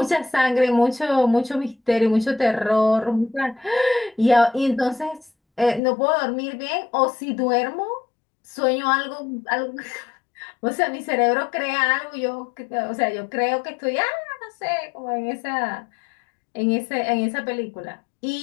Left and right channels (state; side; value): drops out; right; at 5.8 s